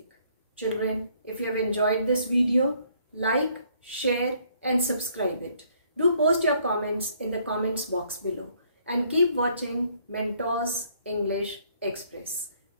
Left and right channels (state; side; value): inverted; both; correlation -0.65